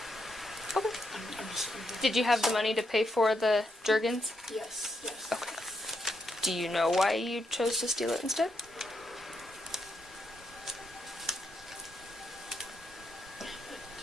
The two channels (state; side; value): normal; both; correlation 0.80